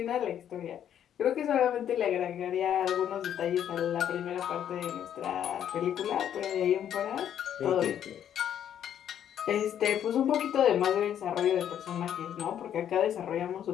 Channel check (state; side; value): quieter; right; 9.8 dB